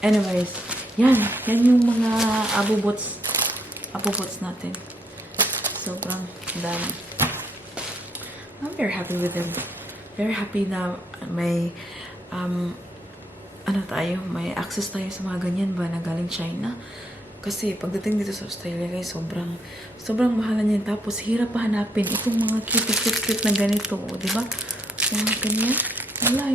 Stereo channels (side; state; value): both; normal; correlation 0.72